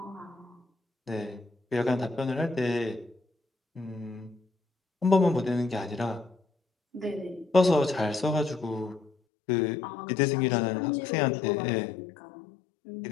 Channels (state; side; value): drops out; right; at 9.1 s